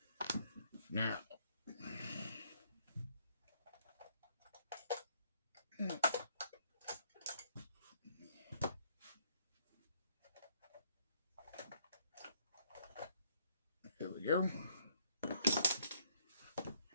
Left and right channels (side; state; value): both; inverted; correlation -0.67